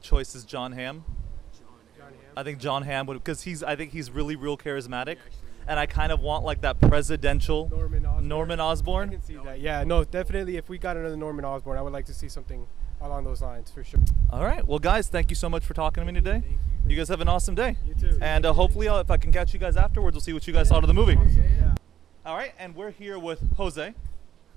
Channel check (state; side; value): quieter; left; 10.1 dB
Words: is John Hamm. John Hamm. I think John Hamm would, because I think he's really real charismatic, and I kind of want like that presidential Norman Osborn. I can see that. Yeah, no, definitely. If we got another Norman Osborn, I would like to see something along those lines for sure. All right, well guys, thank you so much for talking to me today. You guys have an awesome day. You too. And hopefully, if I can catch you guys afterwards, we'll see what you guys thought of the movie. Yeah. All right, and we're here with Jose.